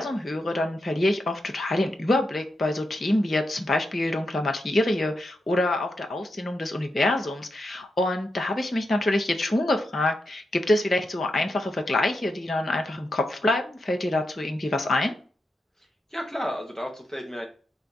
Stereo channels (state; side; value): normal; both; correlation 0.86